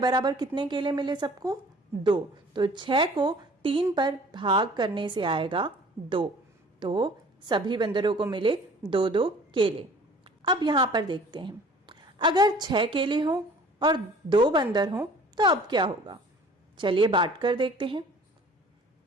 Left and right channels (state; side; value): normal; both; correlation 0.50